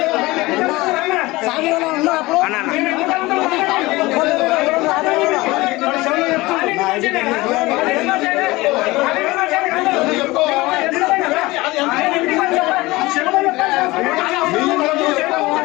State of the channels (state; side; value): quieter; right; 20.7 dB